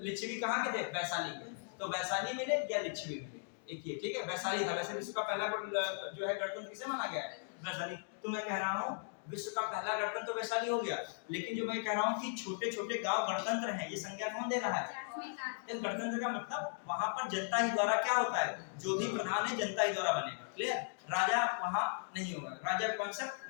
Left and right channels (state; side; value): silent; right; digital silence